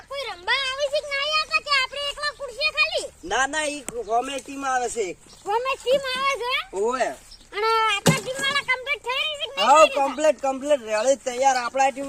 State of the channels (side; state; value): both; identical; correlation 1.00